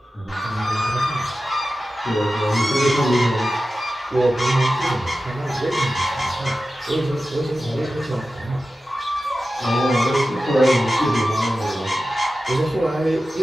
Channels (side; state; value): both; normal; correlation 0.93